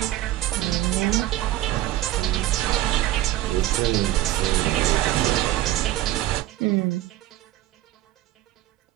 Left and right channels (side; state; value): left; quieter; 14.9 dB